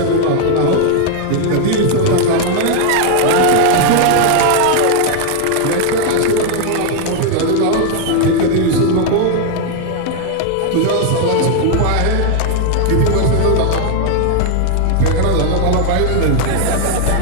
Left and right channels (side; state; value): both; different; correlation 0.00